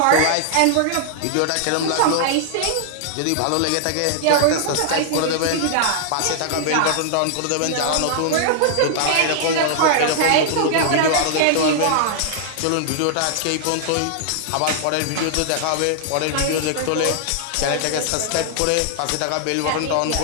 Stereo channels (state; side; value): different; both; correlation 0.00